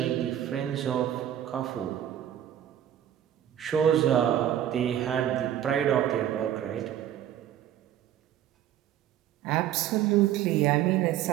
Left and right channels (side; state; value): left; quieter; 11.1 dB